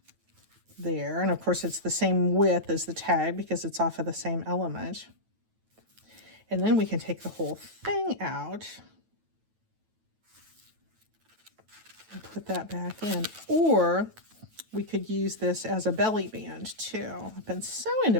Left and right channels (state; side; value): late; left; 9.2 ms